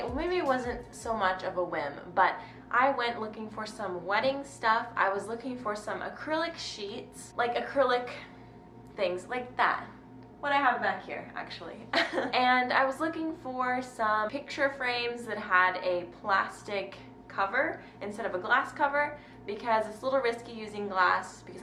Maybe it wasn't so much of a whim, but I went looking for some wedding stuff. I was looking for some acrylic sheets, like acrylic things like that. What I have back here, actually. And I was looking for some picture frames that had a plastic cover instead of a glass cover because it's a little risky using glass because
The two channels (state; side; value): identical; both; correlation 1.00